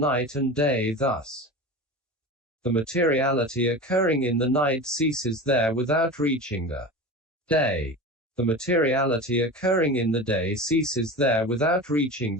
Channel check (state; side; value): normal; both; correlation 0.30